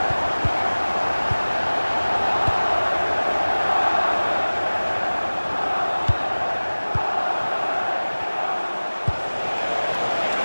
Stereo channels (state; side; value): inverted; both; correlation -1.00